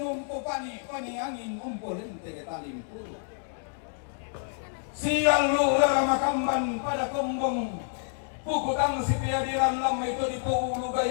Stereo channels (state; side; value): silent; right; digital silence